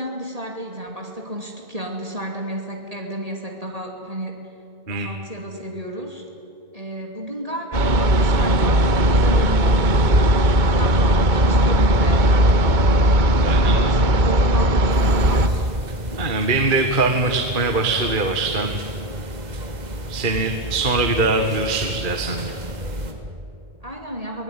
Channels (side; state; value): left; late; 2.0 ms